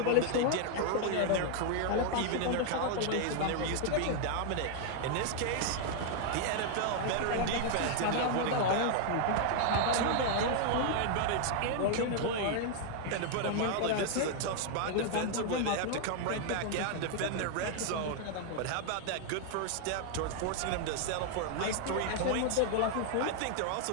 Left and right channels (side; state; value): both; different; correlation 0.00